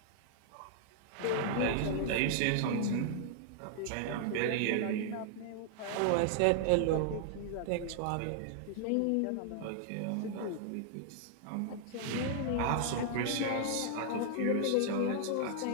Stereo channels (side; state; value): both; different; correlation 0.00